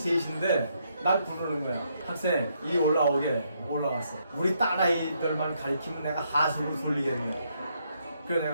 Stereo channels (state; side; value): inverted; both; correlation -0.75